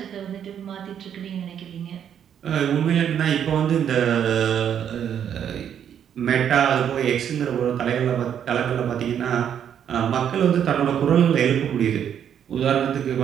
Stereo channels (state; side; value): quieter; left; 9.0 dB